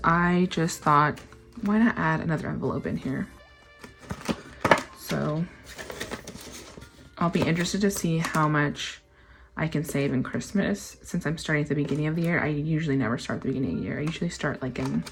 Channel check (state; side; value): identical; both; correlation 1.00